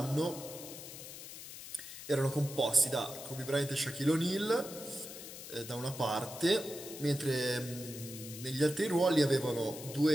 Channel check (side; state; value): left; noise; hiss, 12 dB below the sound